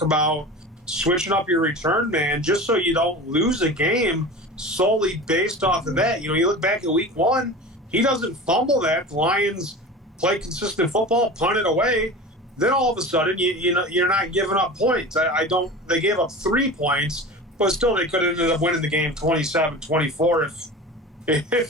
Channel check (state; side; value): normal; both; correlation 0.33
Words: about switching up your return man just so you don't lose a game solely based off of that. You look back at Week 1, he doesn't fumble that. The Lions play consistent football, punt it away. Then all of a sudden, you're not giving up points. They gave up 3 points, but still they could have ended up winning the game 27-24